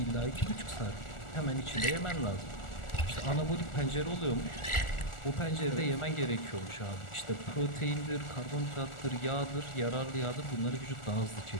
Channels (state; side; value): late; right; 1.4 ms